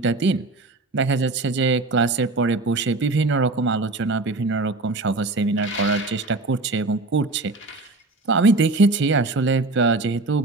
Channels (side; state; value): left; quieter; 3.2 dB